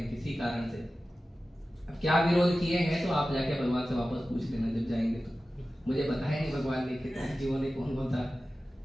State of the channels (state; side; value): normal; both; correlation 0.95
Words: किसी कारण से, अब क्या विरोध किए हैं तो आप जाके भगवान से वापस पूछ लेना जब जाएंगे। तो मुझे बताया नहीं भगवान ने कितने जीवों ने कौन कौन सा